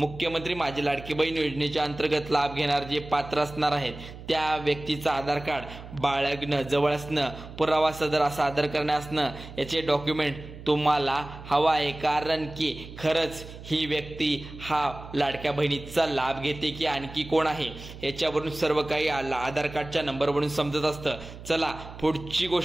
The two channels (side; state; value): right; noise; hum, 14 dB below the sound